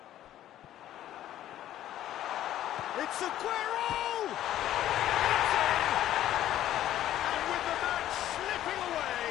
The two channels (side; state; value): right; quieter; 12.5 dB